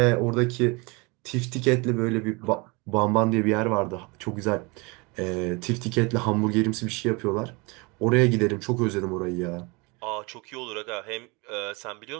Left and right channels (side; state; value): left; quieter; 27.6 dB